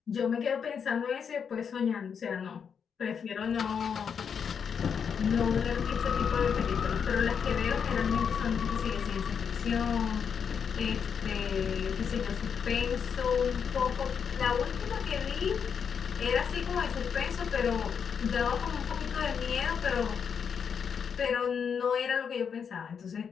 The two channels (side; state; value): right; quieter; 6.9 dB